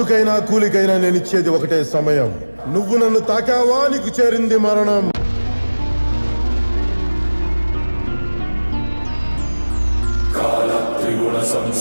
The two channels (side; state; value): both; inverted; correlation -1.00